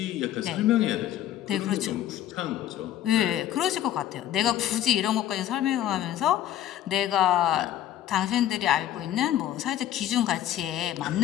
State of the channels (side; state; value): right; quieter; 11.9 dB